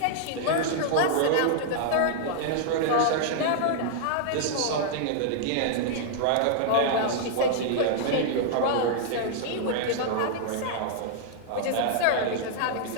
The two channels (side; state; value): both; different; correlation -0.01